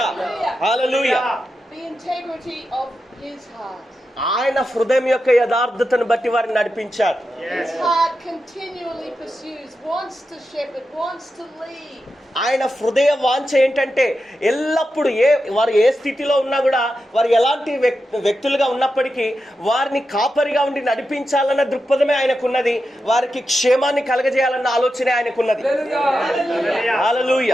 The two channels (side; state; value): both; normal; correlation 0.89